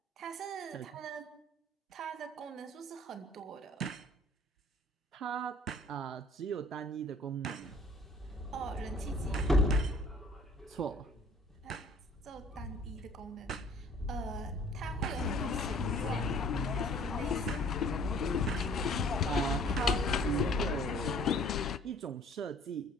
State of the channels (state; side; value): normal; both; correlation 0.54